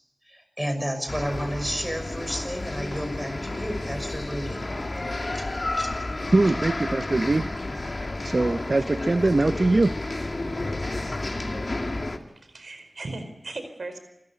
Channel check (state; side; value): normal; both; correlation 0.97